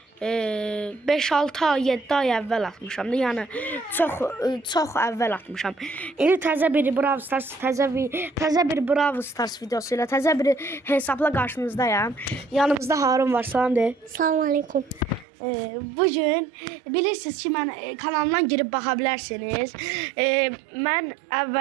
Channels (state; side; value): drops out; left; at 15.2 s